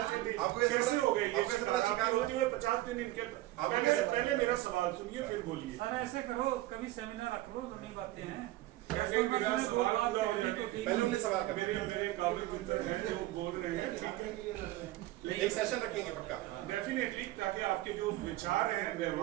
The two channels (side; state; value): left; quieter; 16.8 dB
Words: से थे, कैसे हो गए ये शिकार? होते हुए 50 दिन इनके। पहले मेरा सवाल सुनिए, फिर बोलिए। सर, ऐसे करो, कभी सेमिनार रख लो, नई बातें हैं। मेरा सवाल पूरा हो जाए। पहले हमने सवाल कर मेरे काबिल मित्र हैं जो बोल रहे हैं, ठीक है, एक सेशन रखेंगे पक्का डेफिनेटली, ताकि आपके जो विचार है,